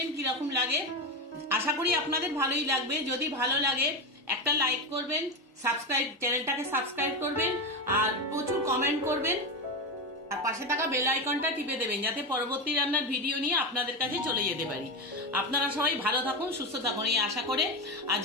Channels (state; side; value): normal; both; correlation 0.16